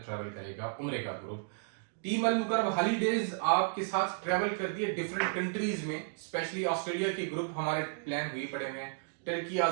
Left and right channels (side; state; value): left; silent; digital silence